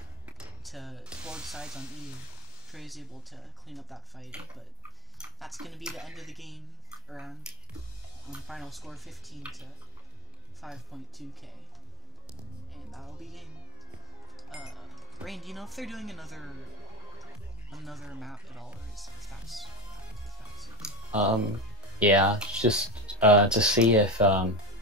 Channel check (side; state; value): both; normal; correlation 0.14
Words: to hold sides on EU. Trey is able to clean up that fight, but that's going to be the end of the game around final score 15 to 5.2k. And that'll be game. Rain, do you know if they're doing another map at all, or if that's it? Yeah, just to see if